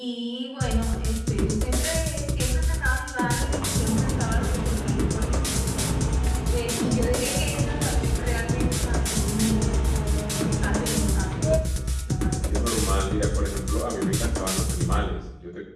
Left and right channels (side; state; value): both; identical; correlation 1.00